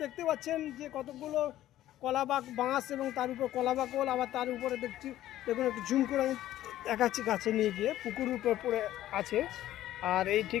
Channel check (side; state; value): right; quieter; 13.6 dB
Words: দেখতে পাচ্ছেন যে কতগুলো কলা বাঁশ এবং তার উপর কলা বাকল, আবার তার উপরে দেখছি দেখুন একটু ঝুম করে আমি দেখাচ্ছি কাছে নিয়ে গিয়ে, পুকুরের উপর পড়ে আছে। আর এই